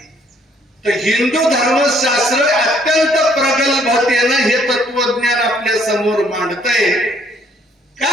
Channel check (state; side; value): normal; both; correlation 0.64